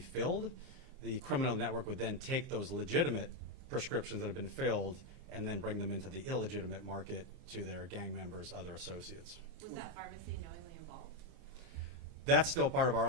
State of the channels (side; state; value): left; late; 29 ms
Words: The criminal network would then take those legitimate prescriptions that have been filled and then bring them into the illegitimate market to their gang members, other associates. Was that pharmacy knowingly involved? That's still part of our